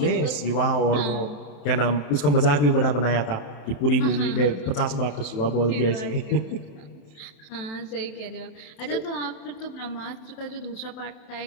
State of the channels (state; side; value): late; right; 28 ms